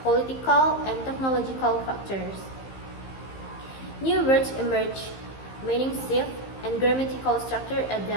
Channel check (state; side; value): late; right; 15 ms